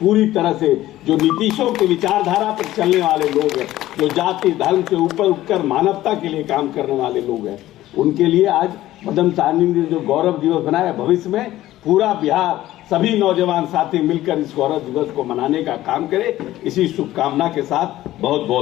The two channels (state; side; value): quieter; right; 15.0 dB